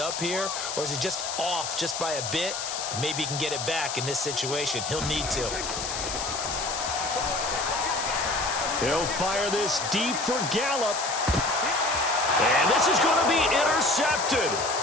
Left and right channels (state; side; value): noise; left; hiss, 5 dB below the sound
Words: here, or is he just off just by a bit? Maybe he can get it back in this situation. He'll need to. He'll fire this deep for Gallup. And this is going to be intercepted.